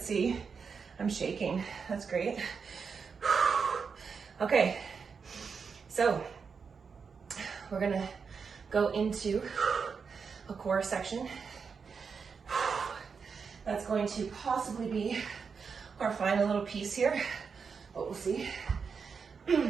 see. I'm shaking. That's great. Okay. So, we're gonna go into a core section. That's going to possibly be our final little piece here, but we'll see.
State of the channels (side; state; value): left; quieter; 5.7 dB